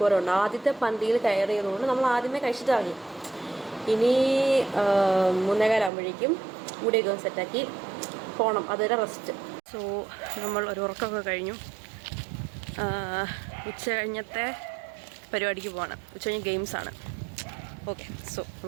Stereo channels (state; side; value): drops out; left; at 5.9 s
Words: ആദ്യത്തെ പന്തിയിൽ കയറിയതുകൊണ്ട് നമ്മൾ ആദ്യമേ കഴിച്ചിട്ടാണ്. ഇനി 3:15 മുടിയൊക്കെ സെറ്റാക്കി പോകണം. അതൊരു റെസ്റ്റ്. സോ നമ്മൾ ഒരു ഉറക്കമൊക്കെ കഴിഞ്ഞു. ഉച്ച കഴിഞ്ഞത്തെ പരിപാടിക്ക് പോകണം. ഉച്ച കഴിഞ്ഞ് ഗെയിംസാണ്. ഓക്കെ, സോ